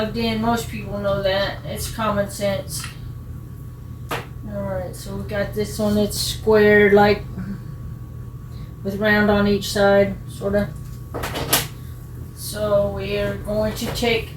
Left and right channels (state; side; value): identical; both; correlation 1.00